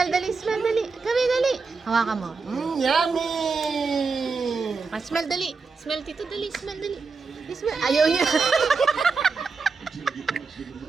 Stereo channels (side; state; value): left; quieter; 4.7 dB